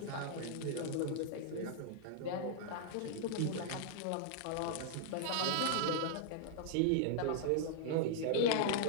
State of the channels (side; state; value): both; different; correlation -0.01